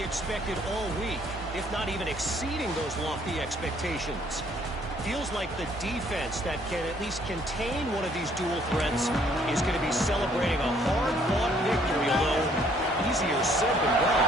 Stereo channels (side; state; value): both; normal; correlation 0.63